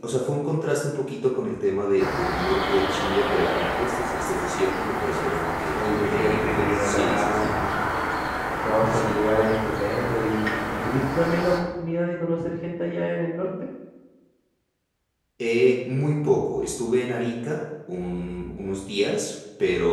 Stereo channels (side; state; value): both; identical; correlation 1.00